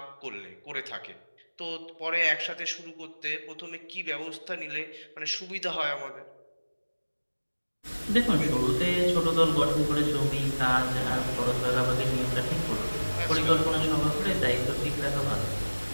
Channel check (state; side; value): inverted; both; correlation -1.00